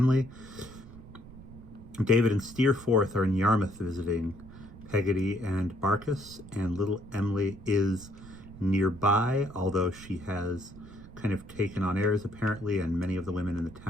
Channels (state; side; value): noise; right; rumble, 17 dB below the sound